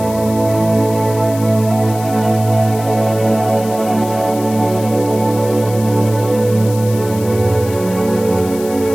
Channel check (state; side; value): noise; left; hiss, 15 dB below the sound